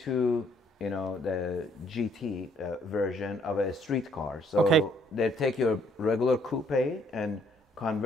you know, the GT version of a street car. So Okay. they take your regular coupe and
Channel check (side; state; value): both; normal; correlation 0.66